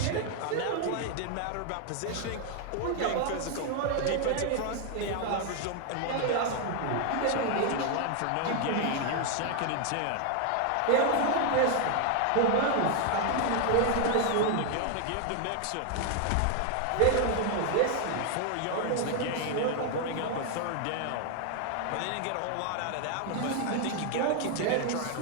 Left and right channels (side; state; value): both; different; correlation 0.00